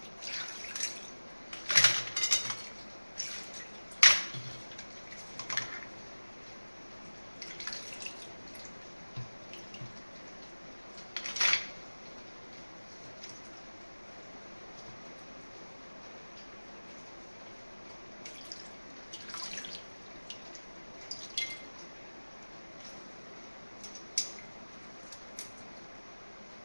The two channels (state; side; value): inverted; both; correlation -1.00